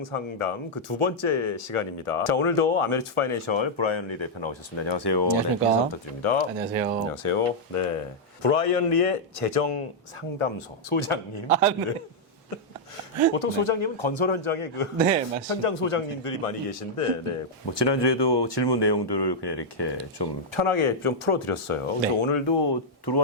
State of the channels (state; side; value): normal; both; correlation -0.05